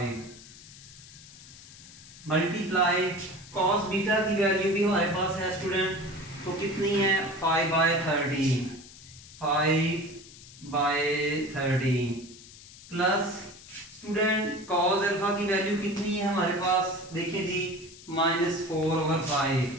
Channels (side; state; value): left; noise; hiss, 19 dB below the sound